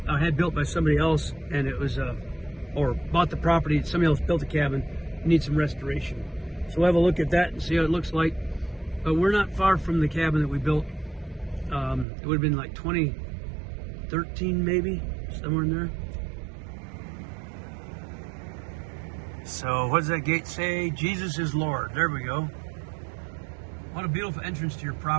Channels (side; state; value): left; drops out; at 12.1 s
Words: had built by somebody else, and it was or bought the property. Somebody else built the cabin, needs some restoration. So we'll have a look at that and see how it looks like. But we're not far from the cabin that we built. It would have been like 2013 maybe, somewhere in there. So what does that gate say? Jesus is Lord. There we go. What a beautiful entrance to your